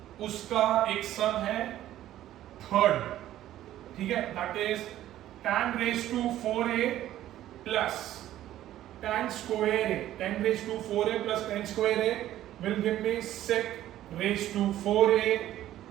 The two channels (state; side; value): quieter; left; 13.2 dB